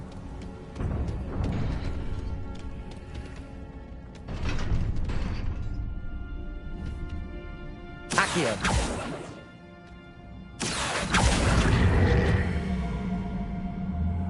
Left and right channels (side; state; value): both; identical; correlation 1.00